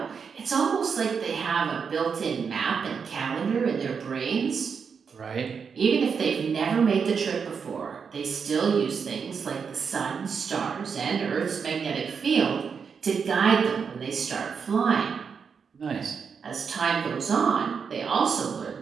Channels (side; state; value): left; quieter; 6.1 dB